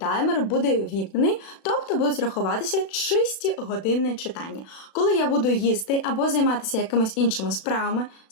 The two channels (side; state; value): right; late; 36 ms